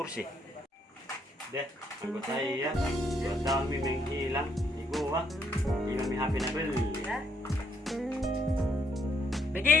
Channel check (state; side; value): normal; both; correlation 0.72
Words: Deh, anggota ya. 2 tahun menghilang di gua. Hilang mi HP na beli.